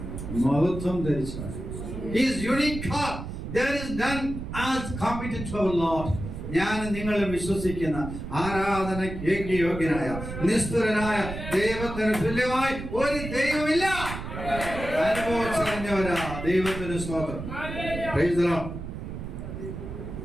മഹത്വം ധരിച്ചവൻ. He is unique God. There is none as competent to our Lord. ഞാൻ നിങ്ങളും വിശ്വസിക്കുന്ന ആരാധനയ്ക്ക് യോഗ്യനായ നിസ്തുലനായ ദൈവത്തിന് തുല്യമായി ഒരു ദൈവമില്ല. അനുഭവിച്ചറിഞ്ഞവരാ ദൈവത്തിന് സ്തോത്രം. Praise the Lord.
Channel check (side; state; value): right; noise; rumble, 8 dB below the sound